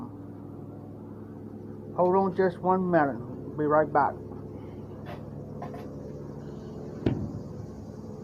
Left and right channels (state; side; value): identical; both; correlation 1.00